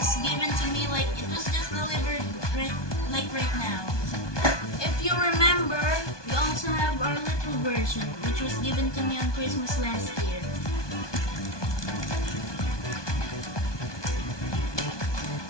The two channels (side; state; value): right; late; 1.2 ms